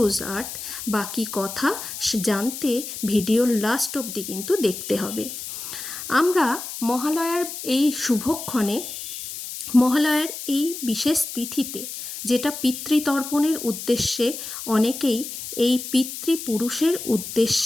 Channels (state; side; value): noise; left; hiss, 8 dB below the sound